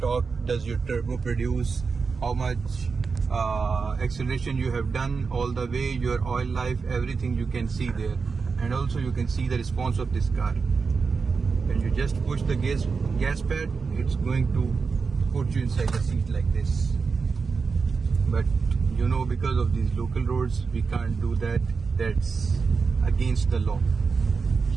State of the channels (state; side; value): quieter; left; 5.0 dB